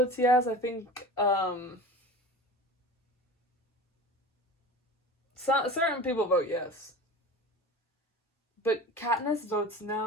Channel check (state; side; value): normal; both; correlation 0.34